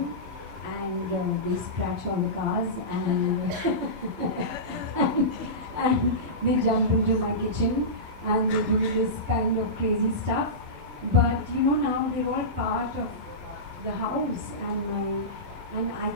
and they scratch all the cars and, and they jump into my kitchen and they do this kind of crazy stuff. But you know, now they're all part of the house, and I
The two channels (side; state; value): left; late; 11 ms